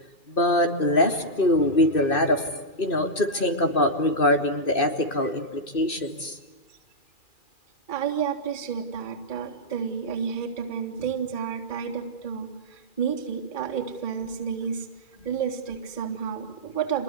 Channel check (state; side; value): late; right; 2.6 ms